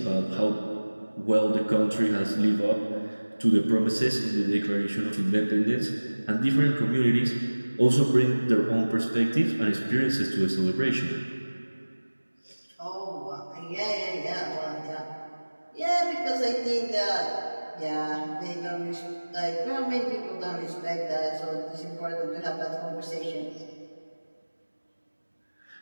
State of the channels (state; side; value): inverted; both; correlation -1.00